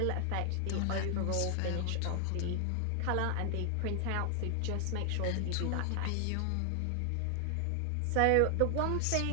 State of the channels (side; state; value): both; different; correlation 0.00